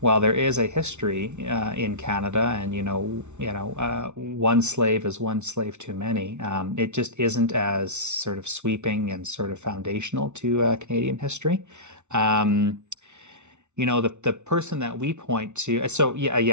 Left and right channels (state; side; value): late; left; 0.82 ms